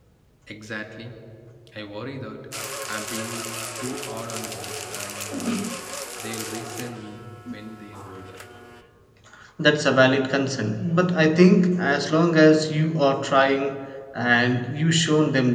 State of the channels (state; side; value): identical; both; correlation 1.00